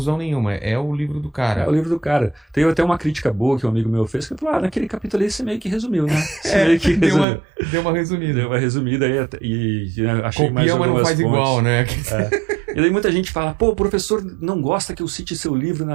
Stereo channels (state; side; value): drops out; left; at 7.2 s